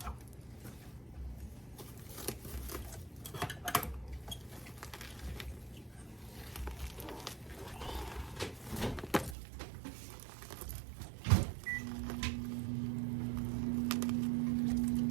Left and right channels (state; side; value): drops out; left; at 9.3 s